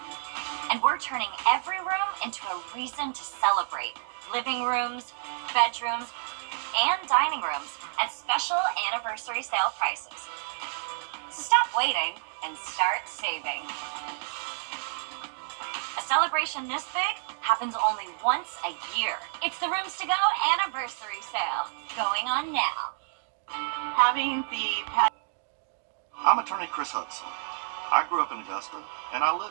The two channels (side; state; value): left; silent; digital silence